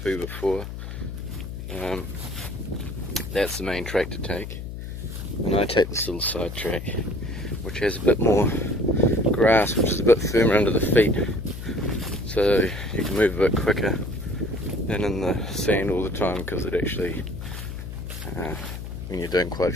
before, that's the main track to take, and I take this little side track which has a bit more grass, which is a bit firmer under the feet, so you can move a bit quicker than in the sand all the time, because it actually, when you're doing quite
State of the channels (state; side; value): noise; left; hum, 8 dB below the sound